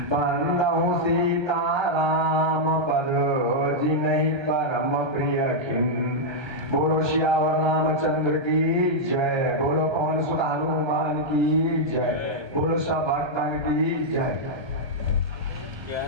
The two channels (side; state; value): left; late; 1.3 ms